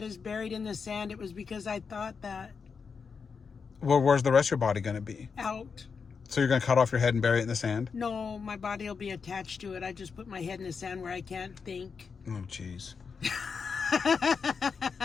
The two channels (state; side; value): quieter; right; 5.6 dB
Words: is buried in the sand, it was because I thought that well, where's the rest of your body going to be? out. So you're going to cut off your head and bury it in the sand? No, my body will be attached to it. I just put my head in the sand where I can't think. Oh, jeez.